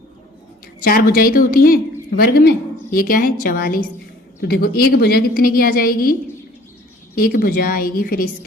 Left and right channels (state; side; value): normal; both; correlation 0.53